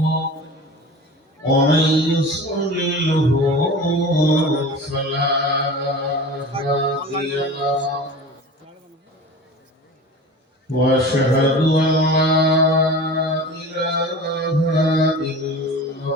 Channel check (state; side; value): normal; both; correlation 0.36